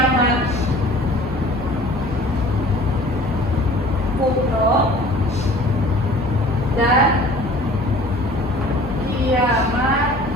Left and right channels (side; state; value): both; normal; correlation 0.48